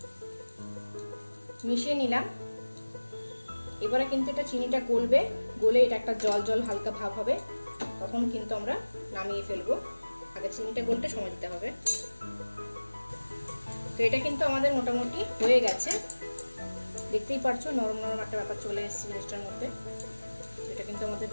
মিশিয়ে নিলাম। এবারে কিন্তু এটা চিনিটা গলবে, গলে এটা একটা জল জল হালকা ভাব হবে, তখন কিন্তু আমরা নামিয়ে ফেলবো। আগে চিনিটা গলতে সময় দিতে হবে। তো এটা কিন্তু আমাদের মোটামুটি হয়ে গেছে, দেখতেই পারছো নরম নরম একটা ব্যাপার চলে এসেছে জিনিসটার মধ্যে। এটা কিন্তু আমাদের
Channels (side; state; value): both; inverted; correlation -1.00